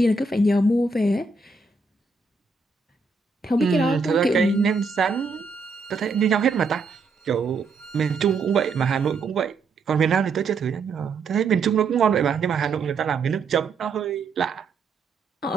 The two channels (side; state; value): left; quieter; 4.3 dB